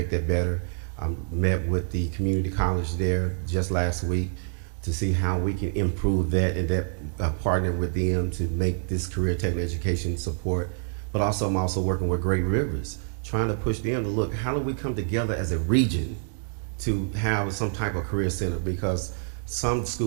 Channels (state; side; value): silent; left; 60 dB below the other